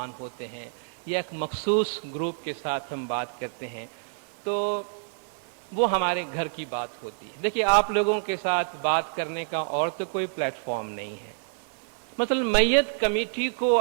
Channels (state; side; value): silent; left; 60 dB below the other